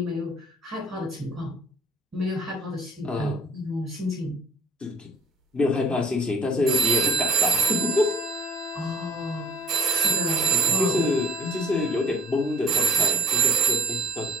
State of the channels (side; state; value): both; normal; correlation 0.53